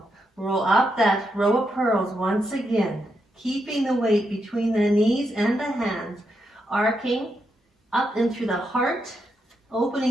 Roll up that row of pearls once again. Keeping the weight between the knees and the hands. Arcing up and through the heart.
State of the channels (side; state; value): both; normal; correlation 0.82